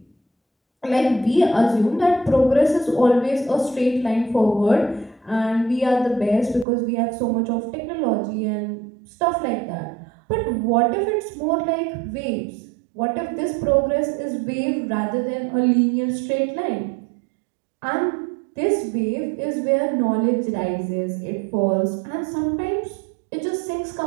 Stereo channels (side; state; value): left; drops out; at 6.7 s